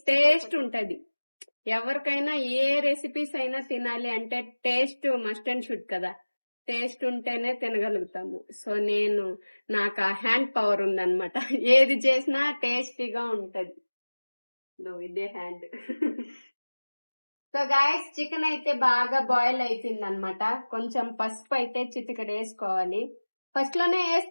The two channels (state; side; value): inverted; both; correlation -1.00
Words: టేస్ట్ ఉంటది. ఎవరికైనా ఏ రెసిపీస్ అయినా తినాలి అంటే టేస్ట్ మస్ట్ అండ్ షుడ్ కదా, టేస్ట్ ఉంటేనే తినగలుగుతాము. సో నాకు ఆ హ్యాండ్ పవర్ ఉందన్నమాట. ఏది చేసినా టేస్టీగా ఉంటది. ఇదే హ్యాండ్. సో గాయస్ చికెన్ అయితే బాగా బాయిల్ అయిపోయింది అనమాట. కొంచెం పసుపు అయితే చిటికెడు వేసుకోవాలి. ఫస్ట్ లోనే